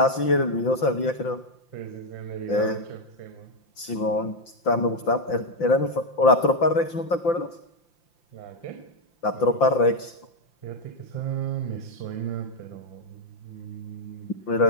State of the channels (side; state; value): right; late; 5.8 ms